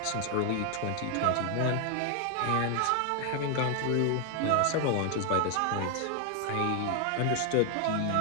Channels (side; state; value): both; different; correlation 0.00